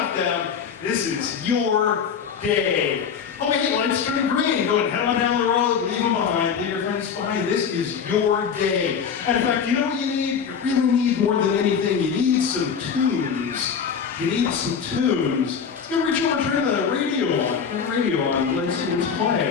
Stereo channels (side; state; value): right; quieter; 6.8 dB